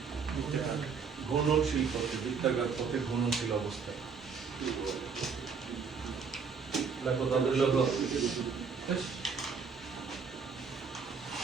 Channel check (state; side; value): quieter; left; 5.7 dB